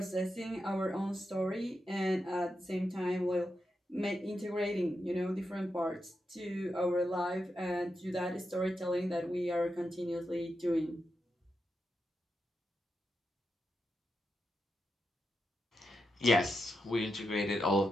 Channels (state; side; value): normal; both; correlation 0.86